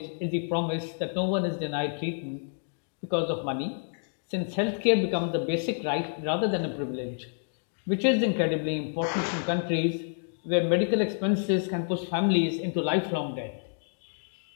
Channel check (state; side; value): silent; right; digital silence